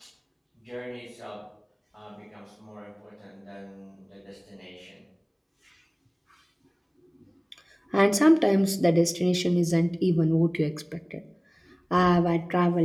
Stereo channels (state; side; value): identical; both; correlation 1.00